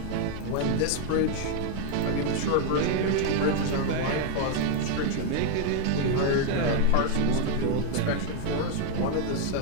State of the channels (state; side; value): different; both; correlation 0.01